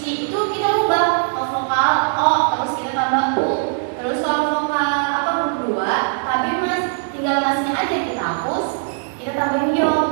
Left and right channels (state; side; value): silent; left; digital silence